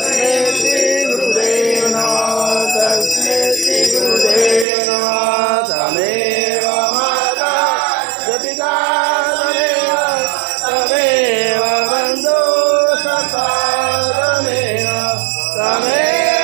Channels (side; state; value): left; drops out; at 4.7 s